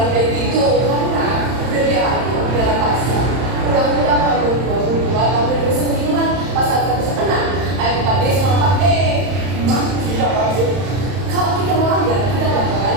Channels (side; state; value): left; late; 31 ms